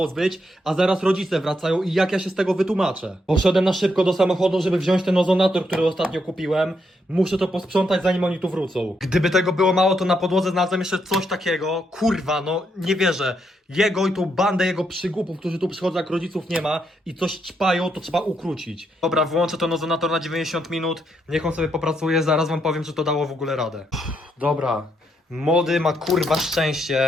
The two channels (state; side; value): normal; both; correlation 0.78